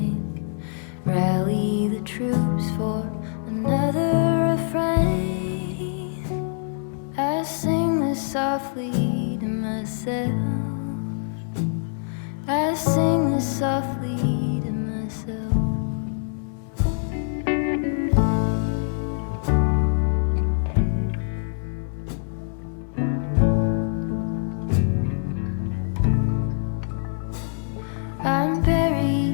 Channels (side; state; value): right; silent; 62 dB below the other